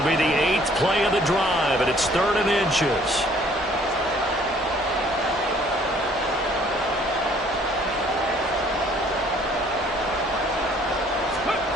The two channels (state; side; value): normal; both; correlation 0.59